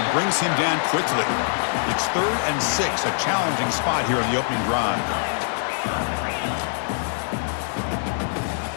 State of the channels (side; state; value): right; silent; digital silence